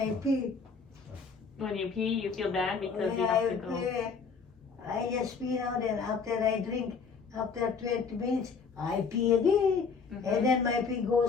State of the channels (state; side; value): quieter; right; 5.3 dB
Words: pee. When you pee, you feel bad because When you I have to go. pee, I just pee now, then after I drink, after 20 minutes, I pee again. Mhm. And then my pee